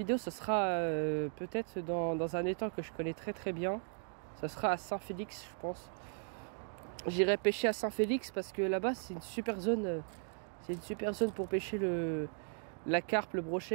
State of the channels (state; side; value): silent; left; 53 dB below the other